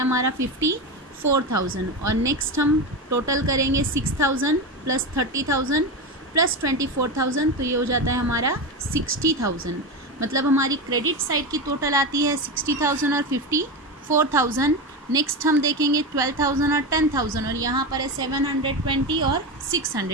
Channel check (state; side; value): normal; both; correlation 0.18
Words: हमारा 54,000। और नेक्स्ट हम टोटल करेंगे 6,000 प्लस 30,000 प्लस 24,000, तो ये हो जाता है हमारा 60,000। मतलब हमारी क्रेडिट साइड की टोटल आती है 60,000 और 54,000। नेक्स्ट हम देखेंगे 12,000 और 10,000, और यहाँ पर है 720 और